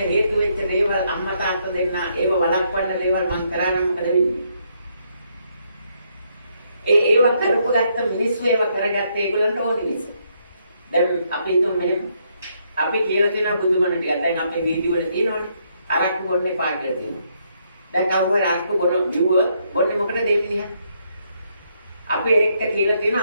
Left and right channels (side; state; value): both; inverted; correlation -0.74